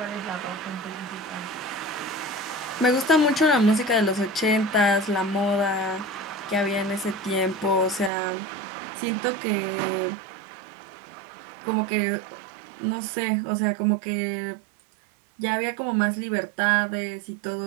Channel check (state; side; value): drops out; left; at 8.1 s